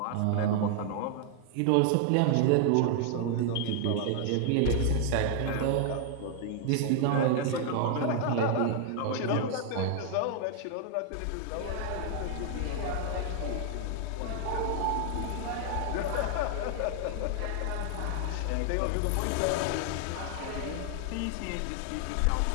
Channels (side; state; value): both; different; correlation 0.00